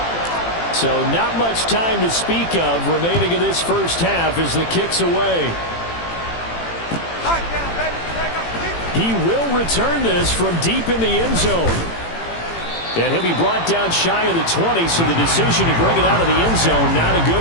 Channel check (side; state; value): right; late; 18 ms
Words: So not much time to speak of remaining in this first half as the kick's away. He will return this from deep in the end zone. And he'll be brought down shy of the 20, so the decision to bring it out of the end zone, not a good